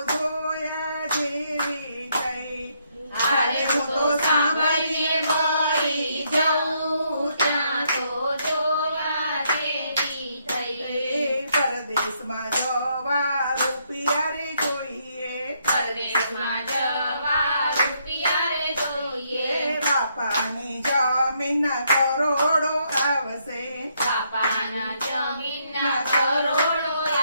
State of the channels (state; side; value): inverted; both; correlation -0.74